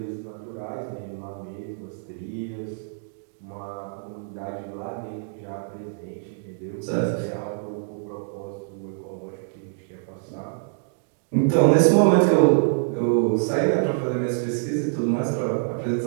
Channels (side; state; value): left; silent; digital silence